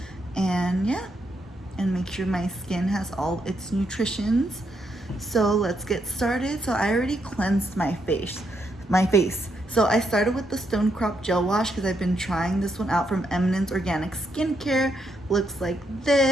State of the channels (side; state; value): both; normal; correlation 0.78